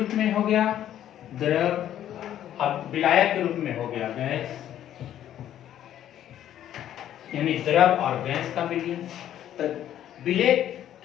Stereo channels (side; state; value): right; quieter; 11.3 dB